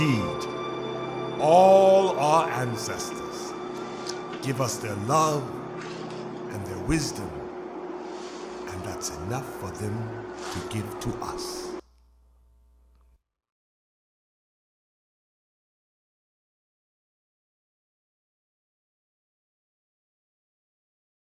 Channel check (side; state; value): both; identical; correlation 1.00